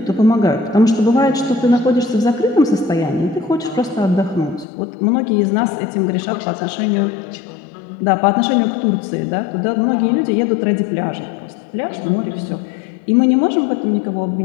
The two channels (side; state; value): right; drops out; at 4.7 s